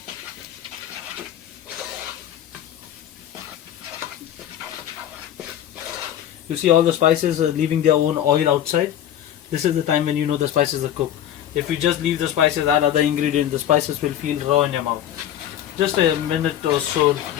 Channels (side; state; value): right; quieter; 11.0 dB